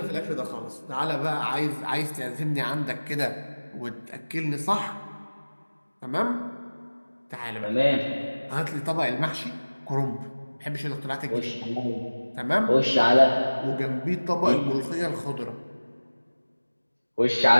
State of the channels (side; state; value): both; inverted; correlation -1.00